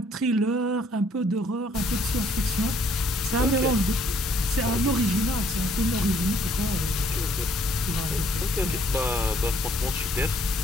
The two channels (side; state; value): both; normal; correlation 0.65